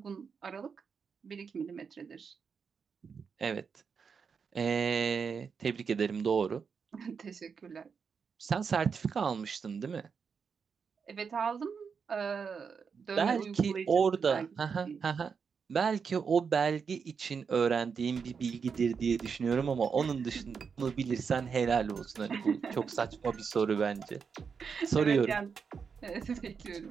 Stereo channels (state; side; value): quieter; left; 6.0 dB